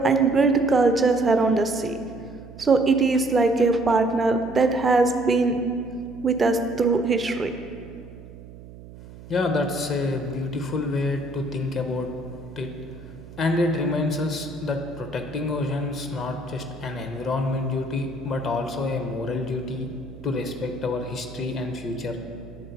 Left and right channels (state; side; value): noise; right; hum, 17 dB below the sound